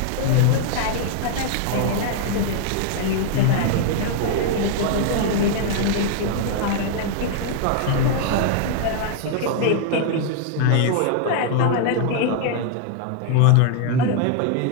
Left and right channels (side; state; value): both; different; correlation 0.00